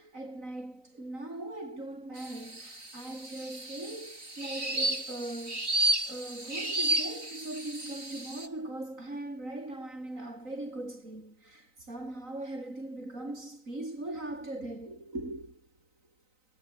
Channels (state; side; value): late; left; 3.9 ms